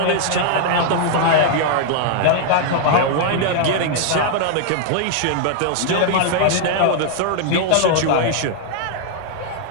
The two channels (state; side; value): different; both; correlation -0.01